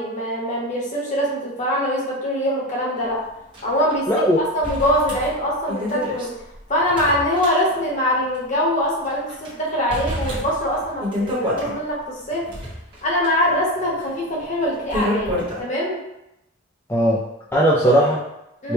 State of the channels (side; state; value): both; normal; correlation 0.22